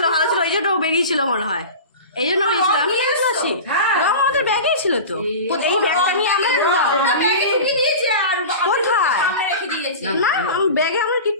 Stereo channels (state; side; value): inverted; both; correlation -0.32